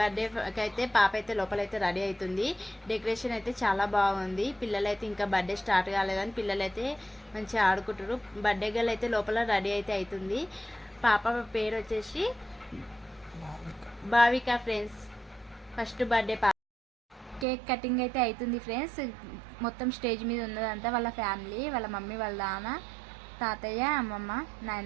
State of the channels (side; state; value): left; drops out; at 17.4 s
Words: అయితే పాప అయితే లోపలైతే రెడీ అవుతుంది. డెకరేషన్ అయితే చాలా బాగుంది. పిల్లలైతే ఇంకా బర్త్డే స్టార్ట్ కాలేదని పిల్లలైతే మంచిగా ఆడుకుంటారు. బర్త్డే గర్ల్ అయితే లోపల రెడీ అయితే అవుతుంది. పాప పేరు వచ్చేసి భావిక. ఫ్రెండ్స్, ఫస్ట్ బర్త్డే పాప. కేక్ కటింగ్ అయితే అవుతుంది ఫ్రెండ్స్. మొత్తం స్టేజ్ మీద ఉన్నదంతా వాళ్ళ ఫ్యామిలీ, వాళ్ళ మమ్మీ, వాళ్ళ నాన్న, తాతయ్య, అమ్మమ్మ,